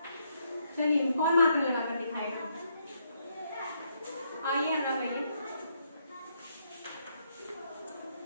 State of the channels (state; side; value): inverted; both; correlation -0.75